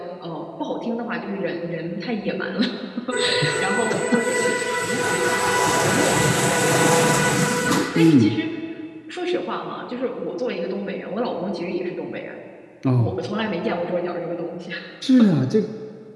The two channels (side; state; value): both; identical; correlation 1.00